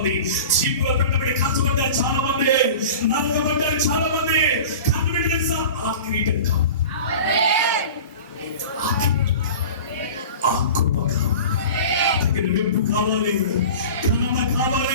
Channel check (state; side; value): inverted; both; correlation -0.37